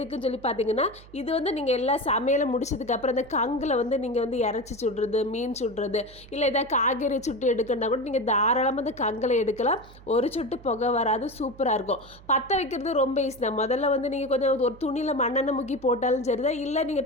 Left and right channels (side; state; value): right; noise; hum, 21 dB below the sound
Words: சொல்லி பார்த்தீங்கன்னா, இது நீங்கள் எல்லா சமையலும் முடிச்சதுக்கப்புறம் அந்த கங்கில் நீங்கள் இறச்சி சுடுறது, மீன் சுடுறது, இல்லை ஏதாவது காய்கறி சுட்டு எடுக்கணும்னா கூட நீங்கள் தாராளமாக அந்த கங்கில் எடுக்கலாம். ஒரு சொட்டு புகை வராது, சூப்பராக இருக்கும். பற்ற வைக்கிறது ரொம்ப ஈஸி தான். முதல்ல நீங்கள் கொஞ்சம் ஒரு துணியில் மண்ணெண்ணெய் முக்கி போட்டாலும் சரிதான், இல்லை